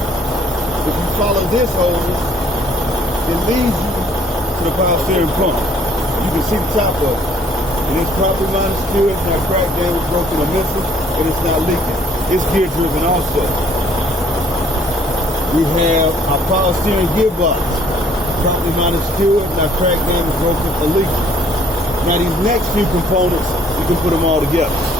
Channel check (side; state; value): both; normal; correlation 0.60